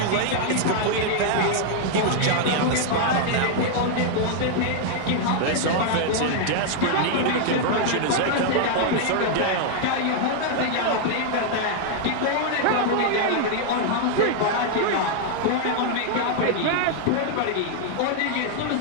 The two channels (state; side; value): different; both; correlation 0.00